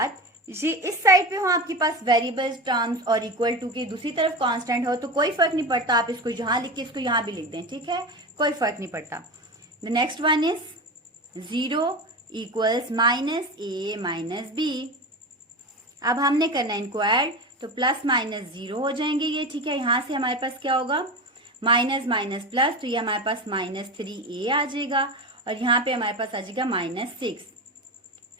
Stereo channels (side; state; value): both; normal; correlation 0.24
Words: ये इस साइड पे हो आपके पास वेरिएबल्स टर्म्स और इक्वल टू के दूसरी तरफ कांस्टेंट हो तो कोई फर्क नहीं पड़ता, आप इसको यहाँ लिख के इसको यहाँ भी लिख दें, ठीक है, कोई फर्क नहीं पड़ता। The next one is 0 equals -a minus b। अब हमने करना है इनको ऐड, तो प्लस माइनस 0 हो जाएंगे ये, ठीक है। यहाँ से हमारे पास क्या होगा, माइनस माइनस प्लस, तो ये हमारे पास -3a आ जाएगा और यहाँ पे हमारे पास आ जाएगा -6।